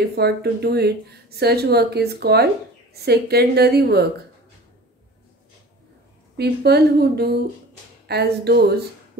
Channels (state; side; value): normal; both; correlation 0.41